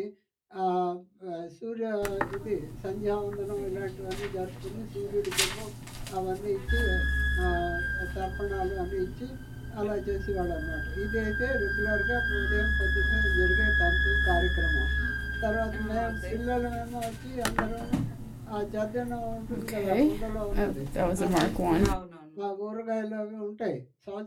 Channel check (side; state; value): both; identical; correlation 1.00